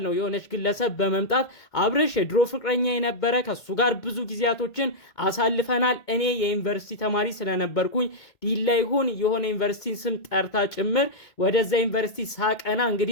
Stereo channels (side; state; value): right; late; 2.2 ms